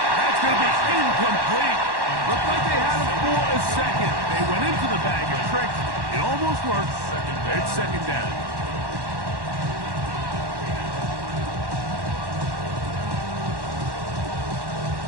That's going to be incomplete. Looked like they had it for a second. They went into the bag of tricks. It almost worked. It's 2nd down.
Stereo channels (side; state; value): left; late; 1.1 ms